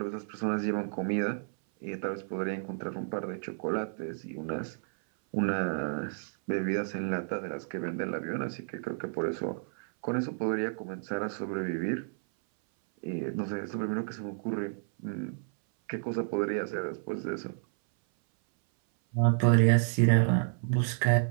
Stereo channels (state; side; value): silent; left; 57 dB below the other